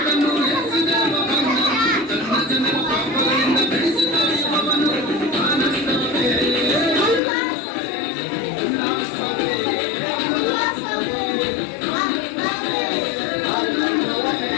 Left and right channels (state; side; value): drops out; right; at 7.2 s